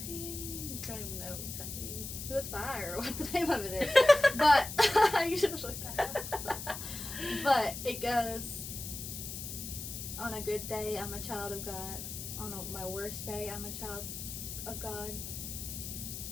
don't even know exactly who it's by or what the name of it is, but you should have looked that up. But it goes, on a good day, I'm a child of God. On my worst day, I'm a child of God.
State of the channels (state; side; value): noise; left; hiss, 8 dB below the sound